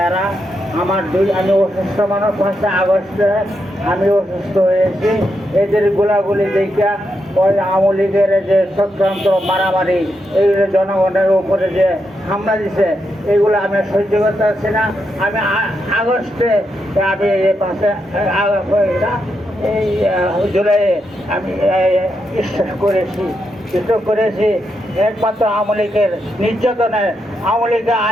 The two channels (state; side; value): normal; both; correlation 0.83